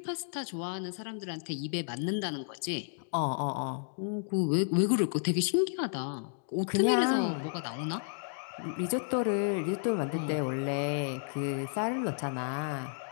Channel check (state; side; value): silent; right; digital silence